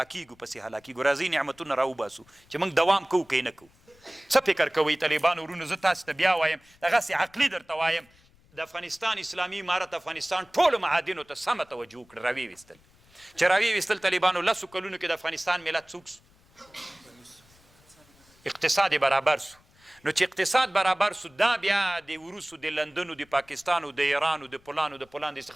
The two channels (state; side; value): noise; left; rumble, 30 dB below the sound